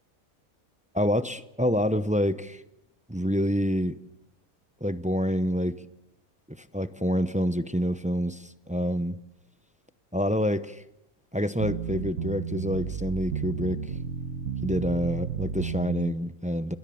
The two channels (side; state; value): both; normal; correlation 0.65